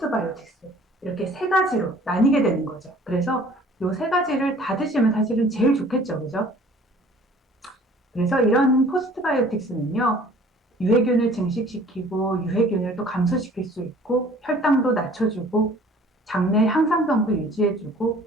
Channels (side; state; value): both; normal; correlation 0.52